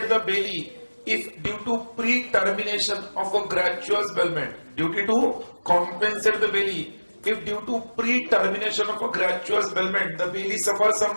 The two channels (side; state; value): both; inverted; correlation -1.00